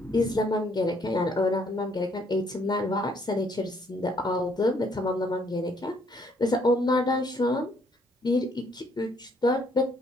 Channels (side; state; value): both; normal; correlation 0.67